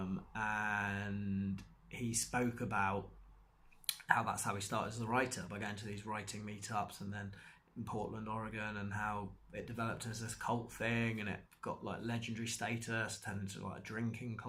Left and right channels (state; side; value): identical; both; correlation 1.00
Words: he spoke about how that's how he started as a writer, by going to these writing meetups, and then in Portland, Oregon, and how it developed as this cult thing, and it got legendary status, turned into a drinking